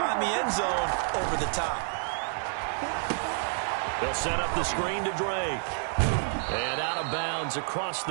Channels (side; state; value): left; silent; 59 dB below the other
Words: the end zone over the top. They'll set up the screen to Drake. And out of bounds across